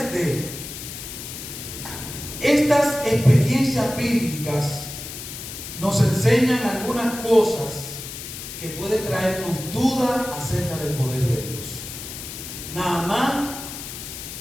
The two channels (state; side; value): noise; left; hiss, 10 dB below the sound